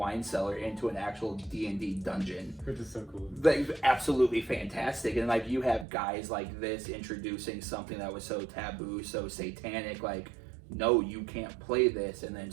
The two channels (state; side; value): drops out; left; at 5.9 s